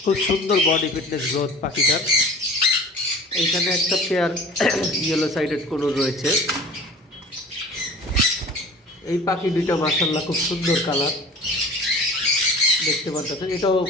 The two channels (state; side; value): normal; both; correlation 0.42